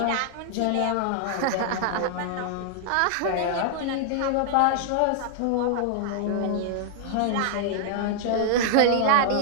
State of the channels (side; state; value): both; different; correlation 0.00